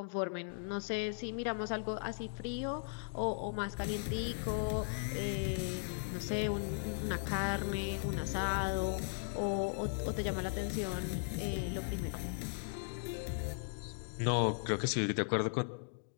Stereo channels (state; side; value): silent; right; digital silence